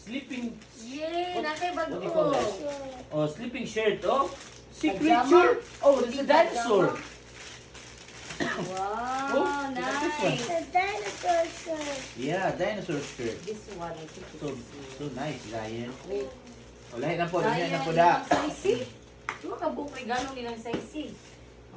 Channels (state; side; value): identical; both; correlation 1.00